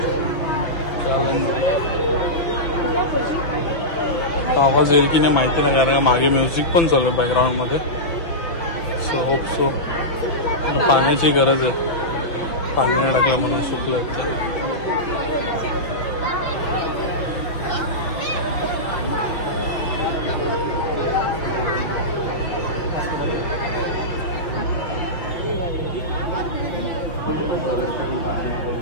आवाज येईल की नाही माहिती नाही, कारण मागे म्युझिक पण चालू आहे बॅकग्राऊंडमध्ये. So hope so. पाण्याची गरज आहे, पाणी नाही टाकलं म्हणून सुकलं आहे.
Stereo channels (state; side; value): late; right; 5.9 ms